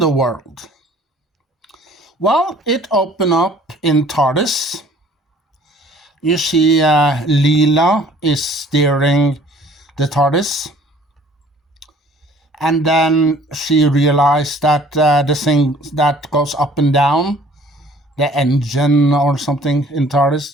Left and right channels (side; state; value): both; normal; correlation 0.54